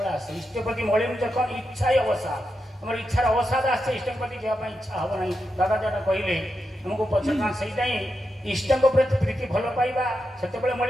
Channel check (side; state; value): both; normal; correlation 0.87